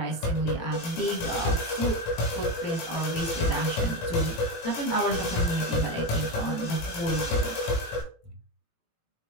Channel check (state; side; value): late; right; 18 ms